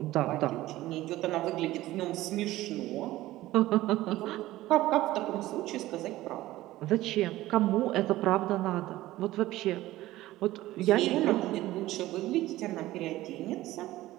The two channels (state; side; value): quieter; left; 16.4 dB